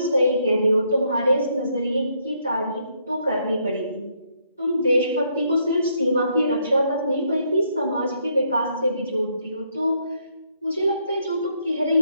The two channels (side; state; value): both; inverted; correlation -0.73